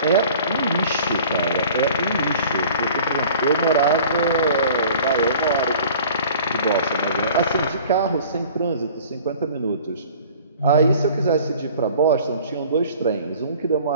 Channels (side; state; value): both; inverted; correlation -0.47